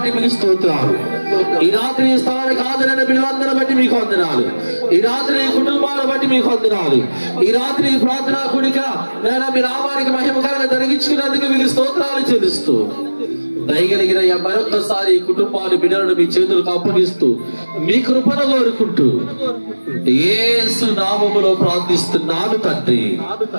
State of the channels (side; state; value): both; inverted; correlation -1.00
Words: మీకు స్తోత్రాలు. ఈ రాత్రి ఈ స్థలానికి హాజరైన బిడ్డలందరిని బట్టి మీకు వందనాలు. ఈ రాత్రి ఈ కుటుంబాలను బట్టి మీకు వందనాలు. ఈ రాత్రి ఈ ప్రార్థనా కూడిక నేను మీ నామానికి మహిమకరంగా జరిగించుకున్నందుకు మీకు స్తోత్రాలు చెల్లిస్తూ దయగలిగిన మరొకసారి ఈ కుటుంబాన్ని, బిడ్డలను మీ చేతులకు అప్పగిస్తూ మీ కృపను కోరుకుంటూ యేసు నామములో ప్రార్థిస్తున్నాను తండ్రి,